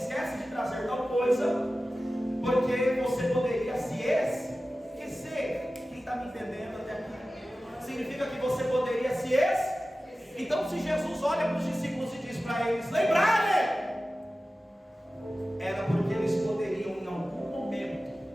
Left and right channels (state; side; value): normal; both; correlation 0.95